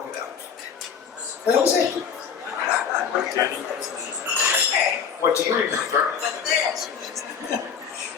it out. And that was it. What do you remember?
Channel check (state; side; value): quieter; right; 7.1 dB